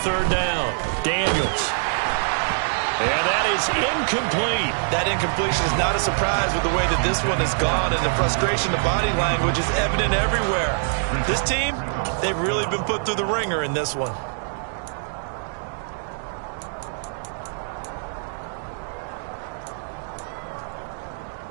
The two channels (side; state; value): left; silent; digital silence